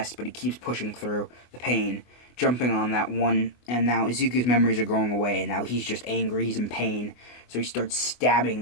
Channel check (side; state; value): right; late; 24 ms